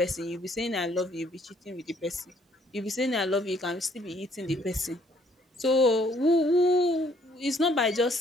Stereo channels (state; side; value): normal; both; correlation 0.64